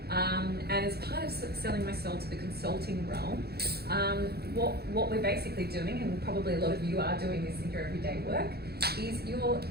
And as part of selling myself to the consulting realm, what we're basically doing, and probably a lot of you are doing this in your everyday work, is you're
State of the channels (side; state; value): left; late; 0.46 ms